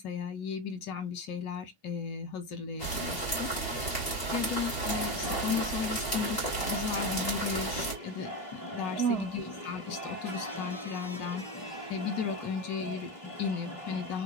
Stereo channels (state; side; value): late; right; 2.8 ms